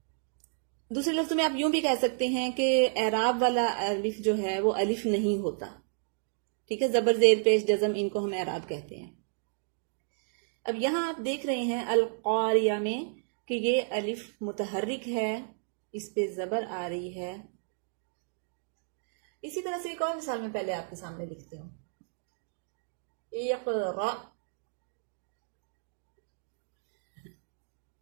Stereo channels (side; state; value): left; silent; digital silence